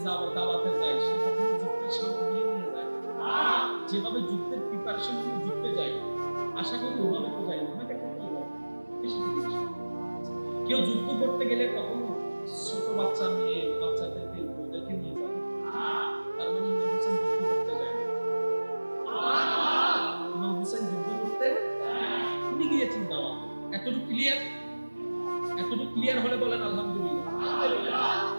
দাওয়াতে যায় সে কখনো যুদ্ধের সামগ্রী নিয়ে যায়? যেভাবে যুদ্ধের প্রিপারেশন নিয়ে যুদ্ধে যায়, আশা করি ওভাবে তো যায় না, হয়তো একটা পরিবার বেশি থেকে বেশি। কেউ যুদ্ধ করতে গেলে কখনো ছোট বাচ্চা মেয়ে বাচ্চাদেরকে ওদেরকে নিয়ে যাবে? তার মানে ইমাম হোসেন যুদ্ধ করতে যায় না। ইমাম হোসেন যুদ্ধ করতে উনি গিয়েছেন দাওয়াতে। এতটুকু ক্লিয়ার? এতটুকু ক্লিয়ার হলে বলেন আলহামদুলিল্লাহ।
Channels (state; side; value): inverted; both; correlation -1.00